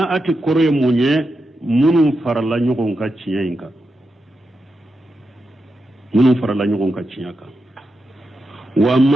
kore munye munun farala nyugon ka ciyinka munun farala nyugon ka ciyaka wa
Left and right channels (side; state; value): both; normal; correlation 0.87